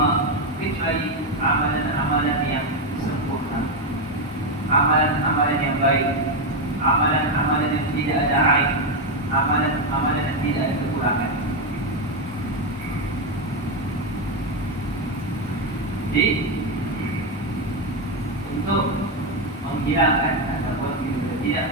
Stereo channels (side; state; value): both; normal; correlation 0.07